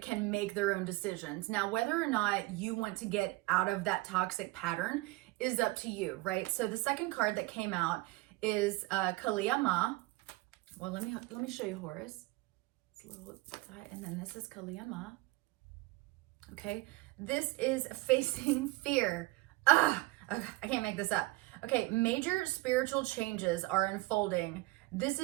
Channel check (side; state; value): left; quieter; 20.7 dB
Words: can make their own decisions. Now, whether or not you want to get out of that toxic pattern is up to you, right? So the second card that came out is Kaliyama. Well, let me show you Horus. It's a little, and then this is Kaliyama. Okay, this is Facing Fear. Okay, I can't make this up. Okay, major spiritual changes are unfolding. This